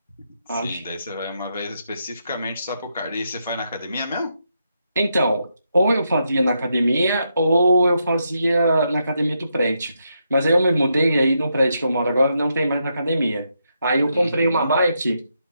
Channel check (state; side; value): inverted; both; correlation -0.81